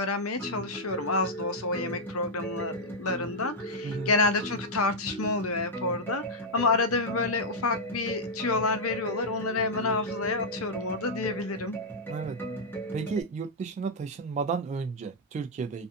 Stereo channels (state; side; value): normal; both; correlation -0.04